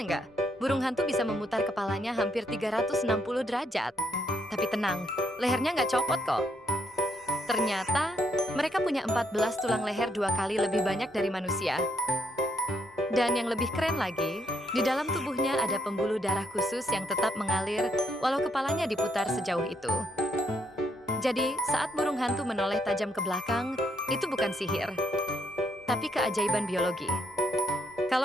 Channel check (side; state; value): both; normal; correlation 0.74